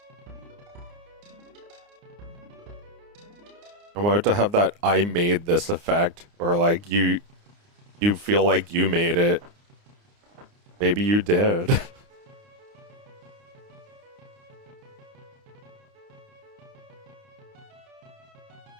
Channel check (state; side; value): late; left; 29 ms